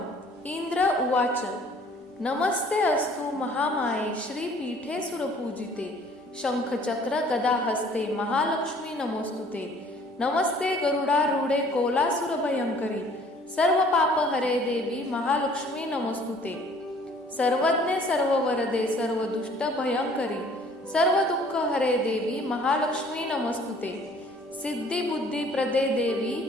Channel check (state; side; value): normal; both; correlation 0.55